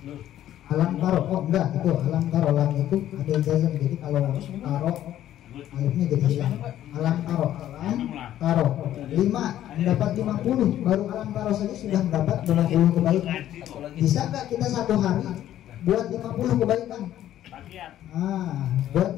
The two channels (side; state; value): right; quieter; 12.2 dB